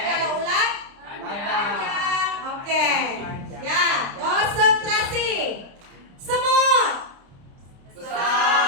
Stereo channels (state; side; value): late; left; 29 ms